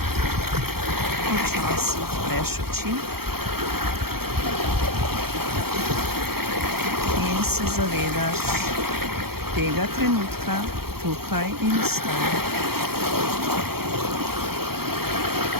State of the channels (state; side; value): late; left; 0.95 ms